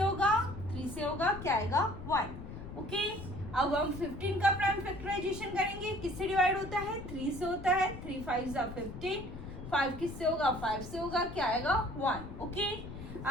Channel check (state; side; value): noise; left; rumble, 11 dB below the sound